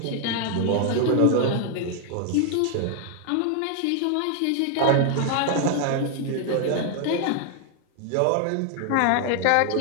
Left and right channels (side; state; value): both; different; correlation 0.00